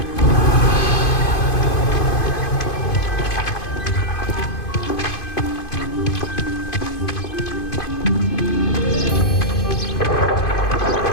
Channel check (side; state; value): right; late; 2.5 ms